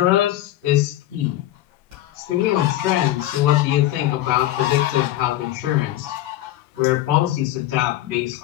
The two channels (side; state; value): right; quieter; 14.6 dB